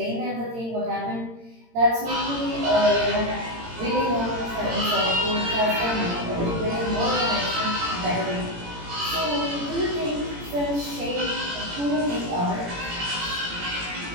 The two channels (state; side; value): late; left; 18 ms